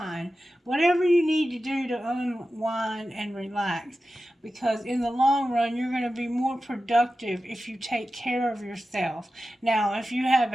Whatever you need to do to unwind and relax. Because in the long run, you're going to be more productive if you take care of yourself. Now, if you have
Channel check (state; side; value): normal; both; correlation 0.93